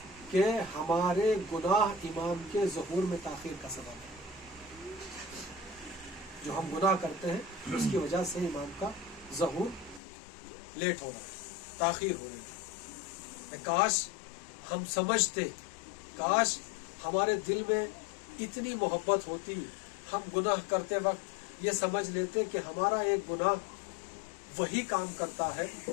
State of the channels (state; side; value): drops out; right; at 10.0 s